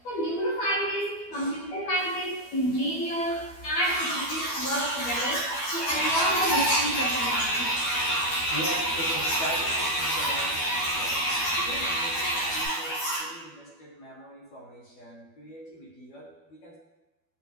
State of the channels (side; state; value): right; late; 12 ms